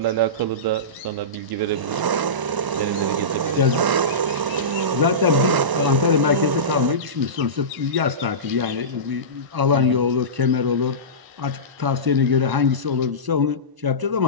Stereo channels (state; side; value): late; left; 1.0 ms